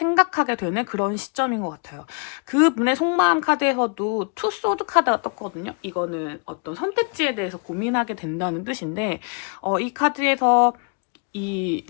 되는 그런 시점인 것 같아요. 그분의 속마음 카드에서도 투 소드 카드가 떴거든요. 이거는 어떤 선택지에 대해서 고민하게 된다는 뜻인데, 이 카드에서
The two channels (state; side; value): quieter; right; 38.2 dB